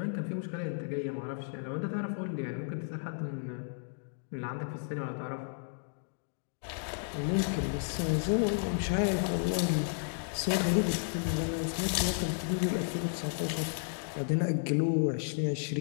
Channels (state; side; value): silent; right; digital silence